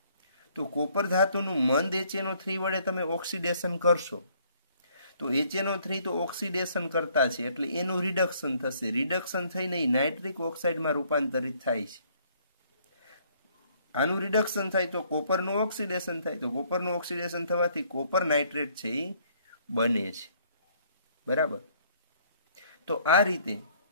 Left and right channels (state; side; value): inverted; both; correlation -0.64